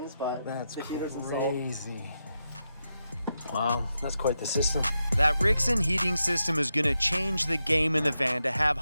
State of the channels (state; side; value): inverted; both; correlation -0.87